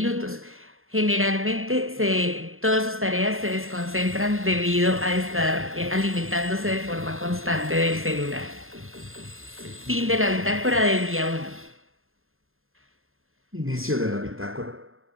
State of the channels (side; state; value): left; late; 0.61 ms